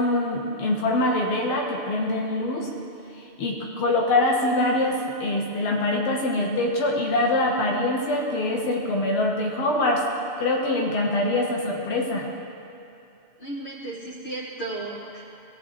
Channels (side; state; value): right; late; 6.8 ms